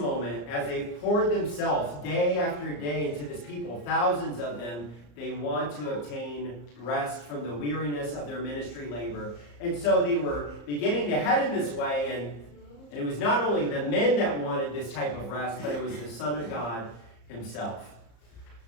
as they poured themselves day after day into this people, thousands of them, they want to obtain rest from the weariness of their ministry labor. And so they were beginning to head in this way, and it was not only the men that wanted this type of rest, but it was the Son of God himself.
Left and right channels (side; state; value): right; late; 34 ms